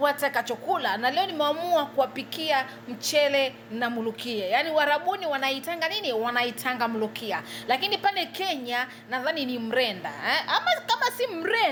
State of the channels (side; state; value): both; identical; correlation 1.00